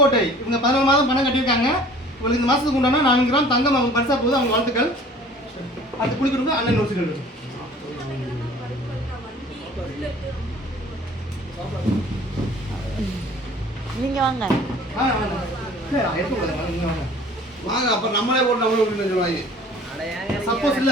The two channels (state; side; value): normal; both; correlation 0.49